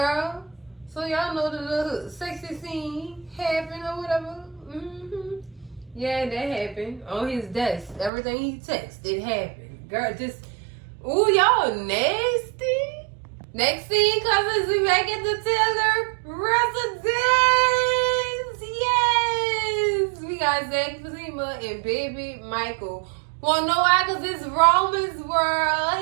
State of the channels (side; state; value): left; drops out; at 8.1 s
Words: So y'all know the little sexy scene happened or whatever. Yeah, that happened on his desk. Everything he texted, it happened. Girl, just, ooh, y'all nasty. Next scene, cousins, we back at the Taylor residence. Yes, we got Zach, Fatima, and baby Michael. Wanna know why? Cause it's Roman's